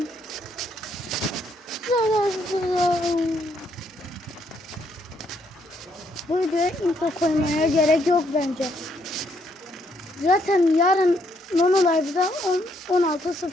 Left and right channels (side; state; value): both; normal; correlation 0.72